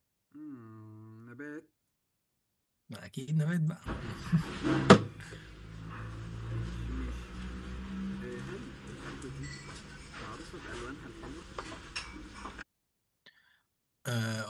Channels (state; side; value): identical; both; correlation 1.00